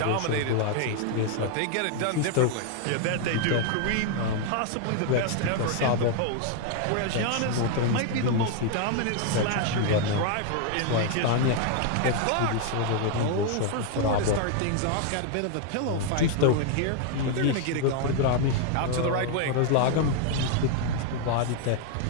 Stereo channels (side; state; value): both; different; correlation 0.00